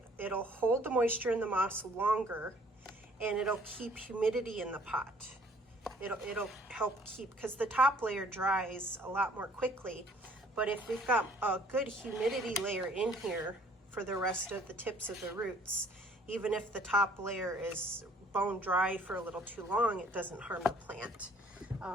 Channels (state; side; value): normal; both; correlation 0.58